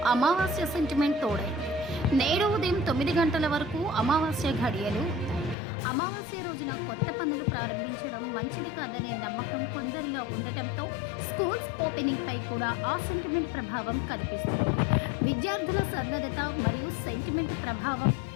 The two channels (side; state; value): right; drops out; at 5.6 s